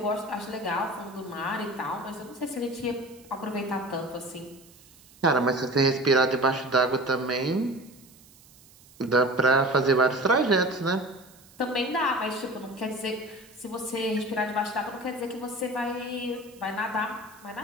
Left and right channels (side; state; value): right; noise; hiss, 25 dB below the sound